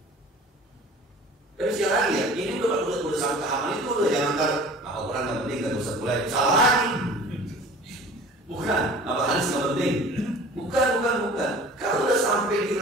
Tapi sekali lagi ya, ini udah sampai tahapan itu udah jangan ntar hafal Quran nggak penting, nggak usah mulai salah lagi. Bukan, hafal hadis nggak penting. Bukan. Kalau udah sampai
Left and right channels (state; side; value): normal; both; correlation 0.44